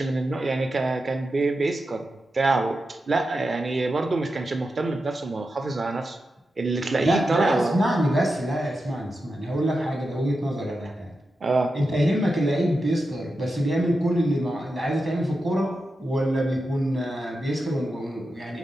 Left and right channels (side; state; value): both; normal; correlation 0.90